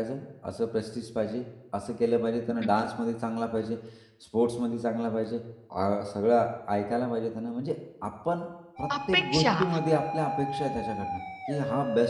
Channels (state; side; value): identical; both; correlation 1.00